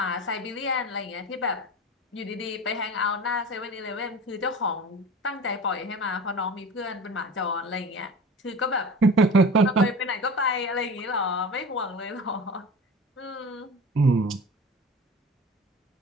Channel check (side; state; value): both; normal; correlation 0.35